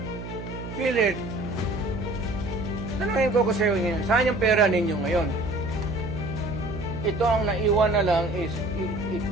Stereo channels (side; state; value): right; noise; hum, 9 dB below the sound